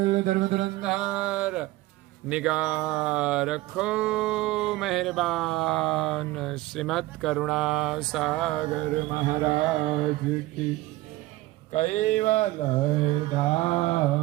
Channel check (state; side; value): quieter; left; 18.3 dB